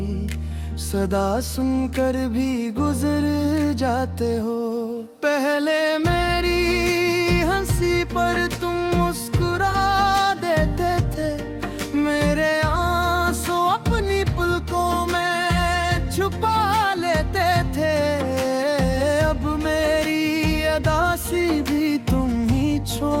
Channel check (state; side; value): identical; both; correlation 1.00